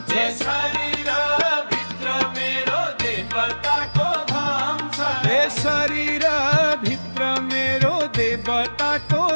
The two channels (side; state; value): both; inverted; correlation -1.00